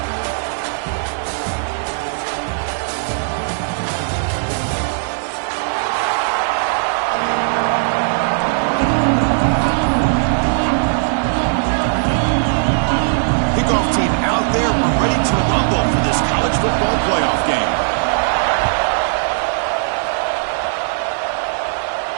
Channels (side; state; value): left; silent; digital silence